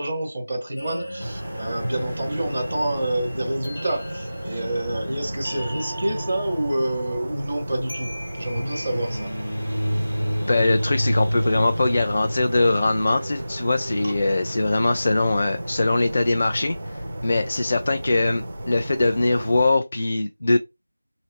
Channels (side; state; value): both; inverted; correlation -0.95